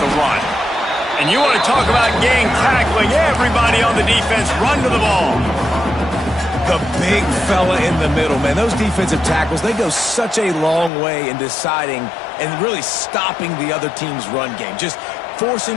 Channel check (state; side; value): drops out; right; at 10.9 s